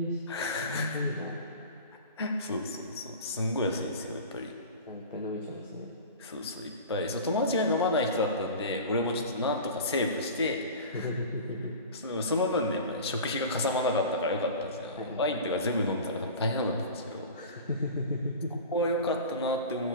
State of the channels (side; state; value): both; inverted; correlation -0.35